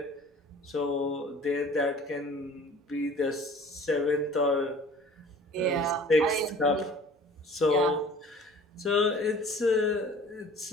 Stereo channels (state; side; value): normal; both; correlation 0.47